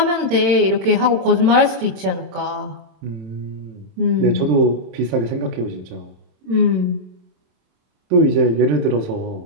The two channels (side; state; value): left; late; 27 ms